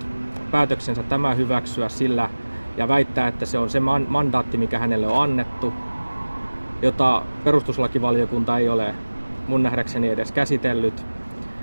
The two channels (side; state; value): both; inverted; correlation -1.00